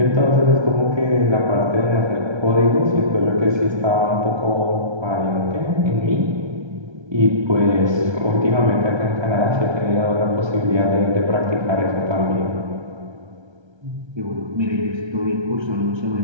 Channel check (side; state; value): left; late; 1.3 ms